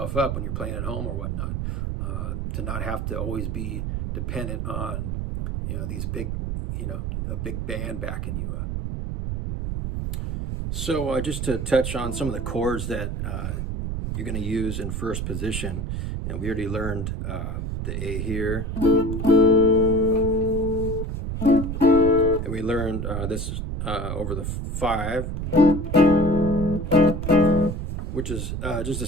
up when you're playing at home or whatnot, to not have to always be dependent on these big, a big band backing you up. So just to touch on some of the chords that you're going to use in first position, and we already learned the A here, and we learned this over the 5, which is just a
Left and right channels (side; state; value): right; noise; rumble, 3 dB below the sound